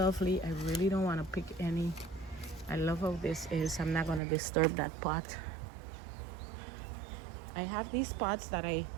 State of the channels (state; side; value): drops out; left; at 4.2 s